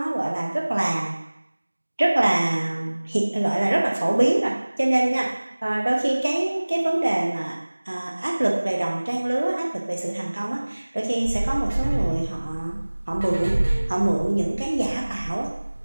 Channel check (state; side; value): inverted; both; correlation -1.00